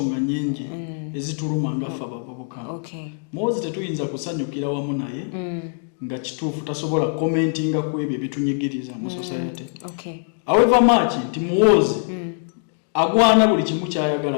nnyingi ezituluma ngaffe abavubuka. Muhoozi tetuyinza kusanyukira wamu naye nga kituufu tasobola commentinga ku ebyo ebitunyigiriza mu society. However much nti Muhoozi agwana buli kimu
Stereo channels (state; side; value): silent; right; 64 dB below the other